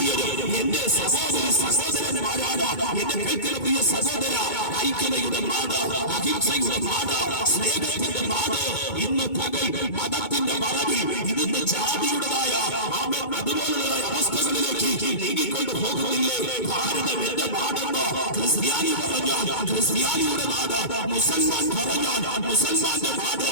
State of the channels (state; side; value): late; right; 2.2 ms